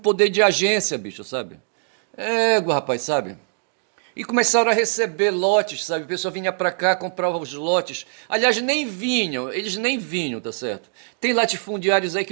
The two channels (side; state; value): left; silent; 61 dB below the other